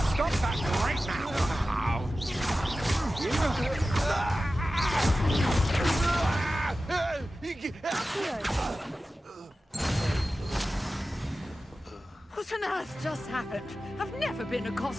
Stop that right now! What on earth just happened? I've never been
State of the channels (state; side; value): normal; both; correlation 0.94